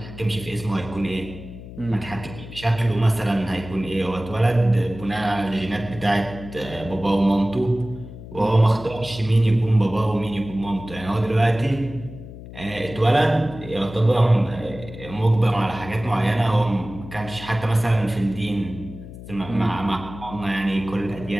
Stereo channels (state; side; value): noise; left; hum, 14 dB below the sound